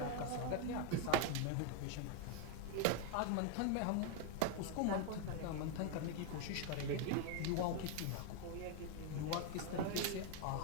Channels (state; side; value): different; both; correlation 0.01